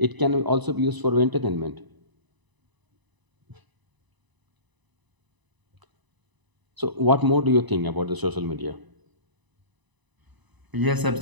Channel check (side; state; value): left; late; 1.0 ms